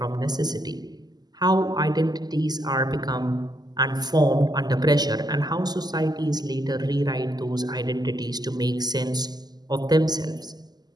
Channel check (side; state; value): left; late; 0.20 ms